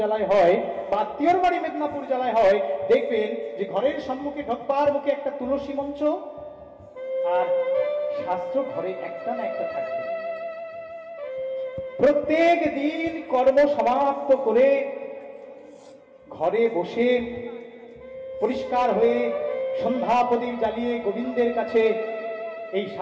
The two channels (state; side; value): identical; both; correlation 1.00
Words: জেলায় হয়, বা আত্মীয়র বাড়ি মেদিনীপুর জেলায় হয়, দেখবেন যে ঘরের সম্মুখে ঢোকবার মুখে একটা তুলসী মঞ্চ, আর শাস্ত্র ঘরে একটা না একটা থাকবে। প্রত্যেক দিন কর্ম সমাপ্ত করে ঘরে বসে পরিষ্কার হয়ে সন্ধ্যা প্রদীপ জ্বালিয়ে গোবিন্দের কাছে এই